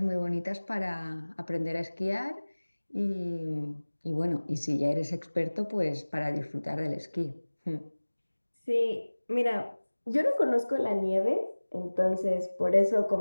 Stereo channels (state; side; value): inverted; both; correlation -1.00